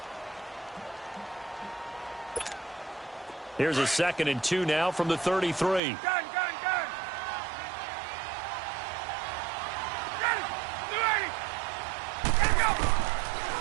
Here's a 2nd and 2 now from the 33. Gun.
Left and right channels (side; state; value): left; drops out; at 5.8 s